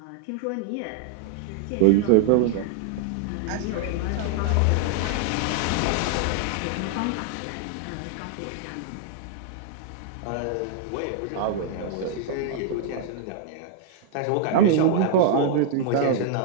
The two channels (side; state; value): both; different; correlation 0.00